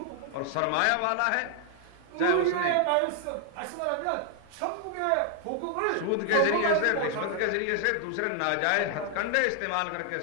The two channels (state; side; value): different; both; correlation 0.00